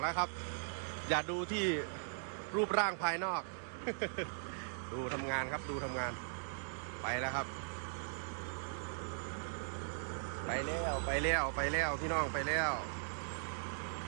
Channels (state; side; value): silent; left; digital silence